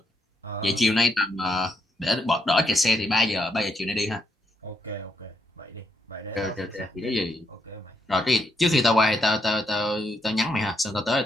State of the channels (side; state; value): both; normal; correlation 0.78